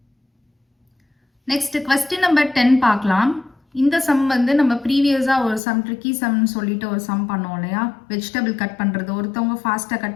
நெக்ஸ்ட் கொஸ்டின் நம்பர் 10 பார்க்கலாம். இந்த சம் வந்து நம்ம ப்ரீவியஸாக ஒரு சம் ட்ரிக்கி சம்னு சொல்லிட்டு ஒரு சம் பண்ணோம் இல்லையா? வெஜிடபிள் கட் பண்ணுறது, ஒருத்தவங்க ஃபாஸ்ட்டாக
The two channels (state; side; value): drops out; right; at 5.6 s